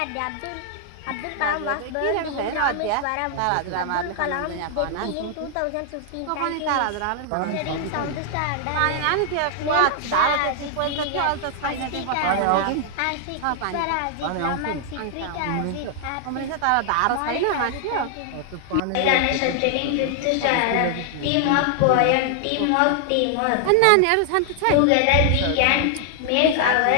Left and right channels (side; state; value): both; different; correlation 0.00